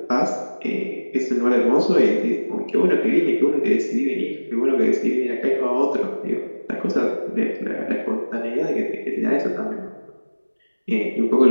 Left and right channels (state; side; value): inverted; both; correlation -1.00